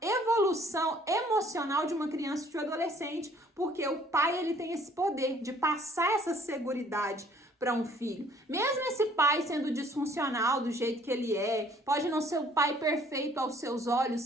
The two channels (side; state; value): both; normal; correlation 0.59